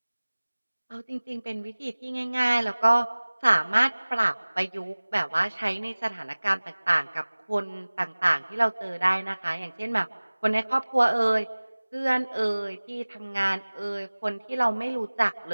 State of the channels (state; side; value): inverted; both; correlation -1.00